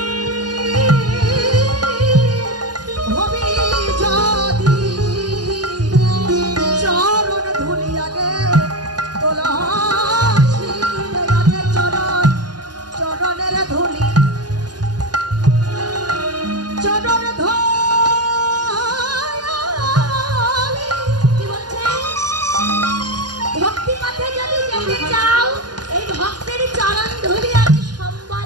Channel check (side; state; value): left; late; 0.70 ms